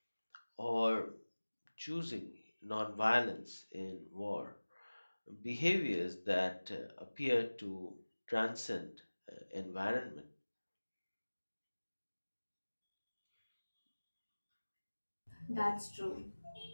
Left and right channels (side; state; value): both; inverted; correlation -1.00